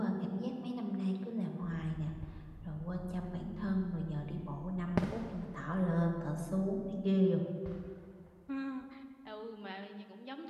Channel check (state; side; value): identical; both; correlation 1.00